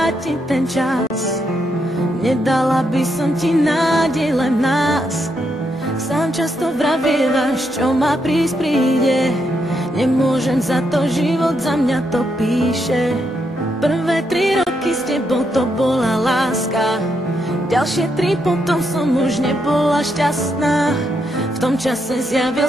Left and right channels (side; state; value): both; normal; correlation 0.80